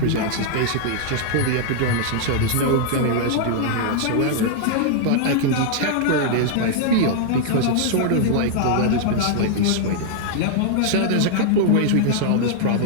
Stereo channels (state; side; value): different; both; correlation -0.01